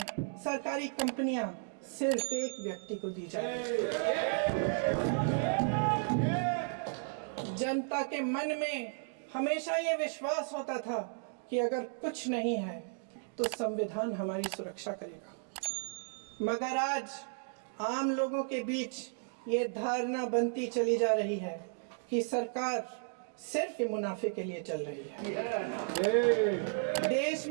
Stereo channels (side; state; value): left; silent; digital silence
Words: सरकारी कंपनियां सिर्फ एक व्यक्ति को दी जाए। जनता के मन में हमेशा ये विश्वास होता था कि अगर कुछ नहीं है तो संविधान हमारी सुरक्षा करेगा, मगर आज आम लोगों के बीच ये धारणा बनती चली जा रही है कि सरकार सिर्फ मुनाफे के लिए चल रही है। देश